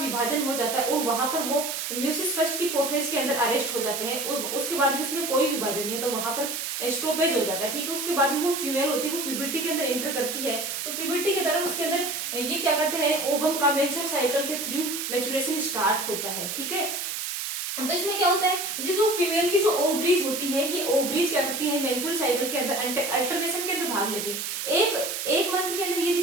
हो जाता है, और वहां पर वो म्यूसिस फर्स्ट की प्रोफेज के अंदर अरेस्ट हो जाते हैं, और उसके बाद भी उसमें कोई विभाजन नहीं है, तो वहां पर स्टॉपेज हो जाता है, ठीक है। उसके बाद में वो फीमेल होती है, वो प्यूबर्टी के अंदर एंटर करती है, तो प्यूबर्टी के दौरान उसके अंदर ये क्या करते हैं, ओवम का मेंस्ट्रुअल साइकिल के थ्रू मैच्योरेशन स्टार्ट होता है, ठीक है। तो इसमें क्या होता है, ये जो फीमेल की जो ओवरीज होती है, ये ओवरीज क्या करती है, मेंस्ट्रुअल साइकिल के अंदर अल्टरनेशन के अंदर भाग लेती है। एक मंथ के अंदर यदि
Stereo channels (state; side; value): noise; right; hiss, 4 dB below the sound